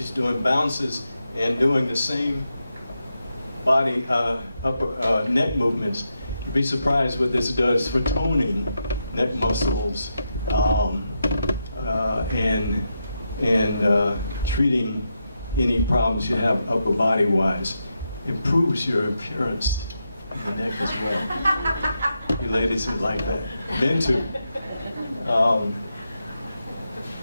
doing bounces and doing the same body upper neck movements. You'd be surprised what this does for toning neck muscles and treating any problems you have upper body wise. Improves your appearance in the neck as well. You ladies would like that. Men too.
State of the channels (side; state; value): both; inverted; correlation -0.85